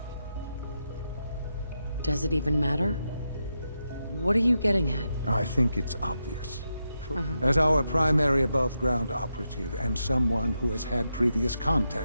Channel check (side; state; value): both; inverted; correlation -0.86